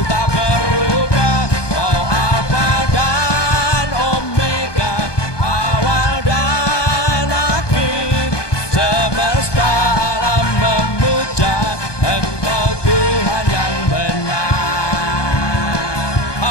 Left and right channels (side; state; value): right; late; 1.2 ms